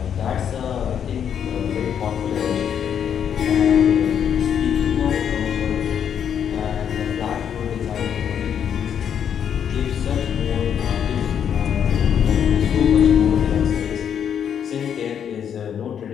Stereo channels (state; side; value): quieter; right; 8.5 dB